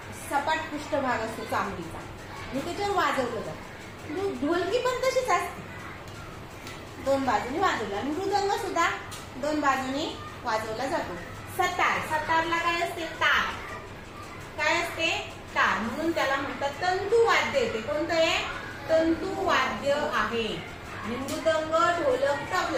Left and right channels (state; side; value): identical; both; correlation 1.00